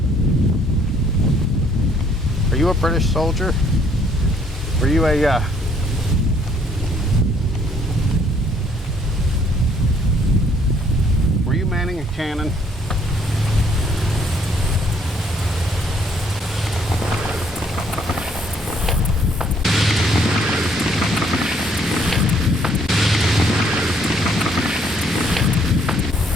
Are you a British soldier? Were you a were you manning a cannon?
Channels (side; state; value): both; normal; correlation 0.65